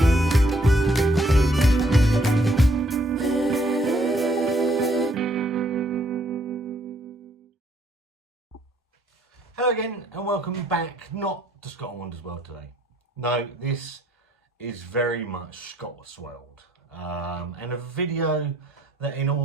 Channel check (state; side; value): normal; both; correlation 0.66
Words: Hello again and welcome back, not to Scott and Wanda's World today. No, this is very much Scott's World, and a video that in